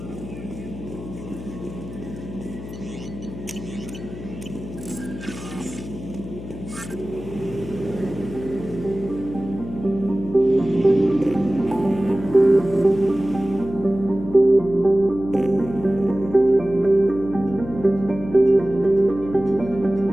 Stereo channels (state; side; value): noise; left; hum, 12 dB below the sound